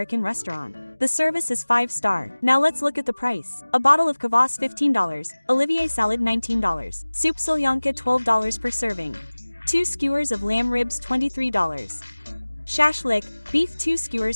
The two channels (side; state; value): both; inverted; correlation -1.00